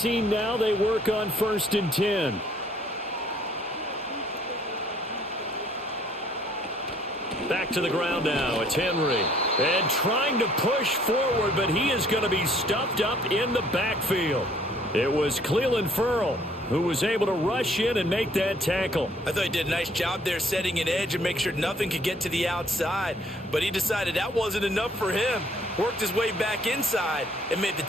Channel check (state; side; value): normal; both; correlation 0.61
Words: now, they work on 1st and 10. Back to the ground now. It's Henry. And trying to push forward, but he is going to be stuffed up in the backfield. It was Clelin Ferrell who was able to rush in and make that tackle. I thought he did a nice job there setting an edge and make sure nothing could get to the outside. But he decided that wasn't enough for him. Worked his way back inside and made the